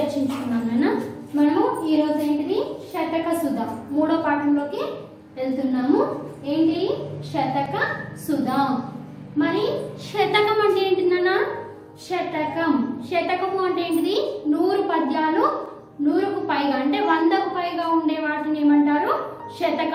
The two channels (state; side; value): identical; both; correlation 1.00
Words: నాన్న. మనము ఈరోజు ఏంటిది శతక సుధ మూడో పాఠంలోకి వెళ్తున్నాము. ఏంటి శతక సుధ. మరి శతకం అంటే ఏంటి నాన్న? శతకము అంటే ఏంటిది? 100 పద్యాలు 100కు పైగా అంటే 100కు పైగా ఉండే వాటిని ఏమంటారు?